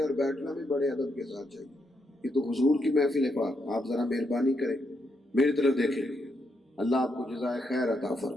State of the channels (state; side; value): normal; both; correlation 0.80